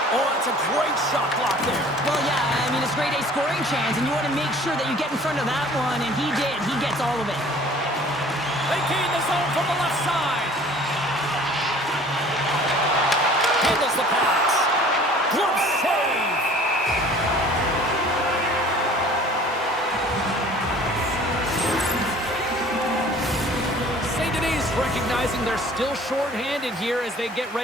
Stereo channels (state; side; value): normal; both; correlation 0.50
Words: Oh, that's a great shot block there. Well, yeah, I mean, it's grade A scoring chance, and you want to make sure that you get in front of that one, and he did. He gets all of it. They gain the zone from the left side. Handles the pass. Glove save. St. Denis recognizing they're still short-handed here as they get